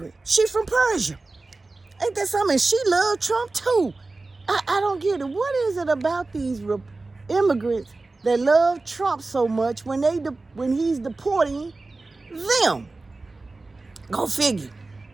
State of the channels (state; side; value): quieter; left; 3.4 dB